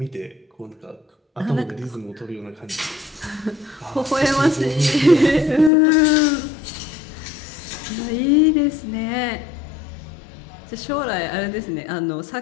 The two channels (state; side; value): drops out; right; at 5.7 s